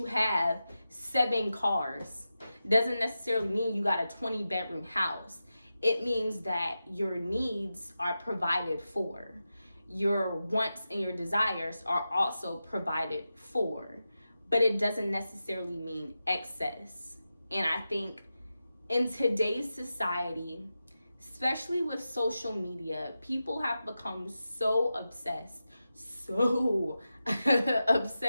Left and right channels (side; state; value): both; inverted; correlation -0.92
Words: have 7 cars, doesn't necessarily mean you got a 20-bedroom house. It means that your needs are provided for, your wants and your desires are also provided for, but it doesn't necessarily mean excess. And I think in today's society, especially with social media, people have become so obsessed